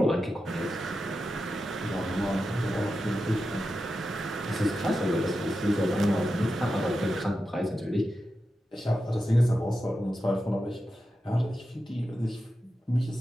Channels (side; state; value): both; normal; correlation 0.90